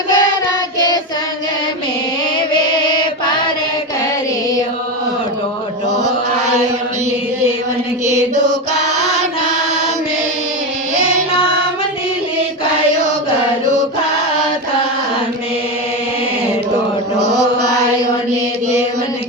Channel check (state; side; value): normal; both; correlation 0.16